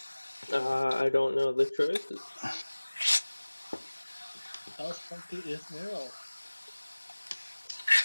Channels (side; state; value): both; inverted; correlation -1.00